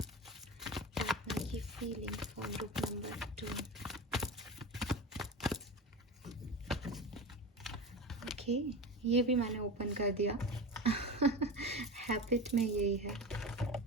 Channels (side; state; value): both; normal; correlation 0.26